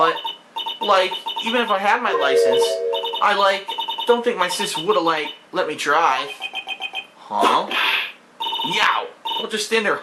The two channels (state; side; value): identical; both; correlation 1.00